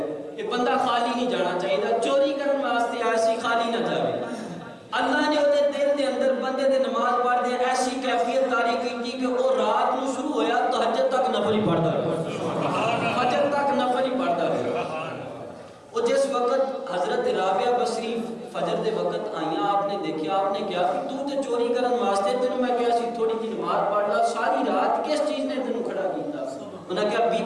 یہ بندہ خالی نہیں جانا چاہیے چوری کرنے واسطے آیا سی خالی نہ جاوے اللہ نے وہ دل دے اندر بندے دے نماز پڑھ دے ایسی کیفیت طاری کی کہ وہ رات نو شروع ہویا تہجد تک نفل ہی پڑھتا رہا فجر تک نفل ہی پڑھتا رہا وہ جس وقت حضرت رابعہ بصری فجر دے وقت آئیاں آپ نے دیکھا آپ نے کیا کہ تو تے چوری کرن واسطے تینوں میں کیا سی تھوڑی کی نماز پڑھ لا ساری رات کس چیز نے تینوں کھڑا کیتا انہوں نے کہا بی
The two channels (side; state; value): both; identical; correlation 1.00